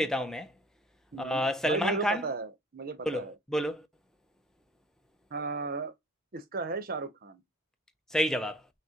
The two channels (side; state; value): both; normal; correlation 0.51